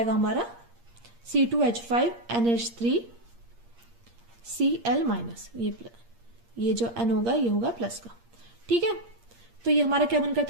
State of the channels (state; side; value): late; left; 8.6 ms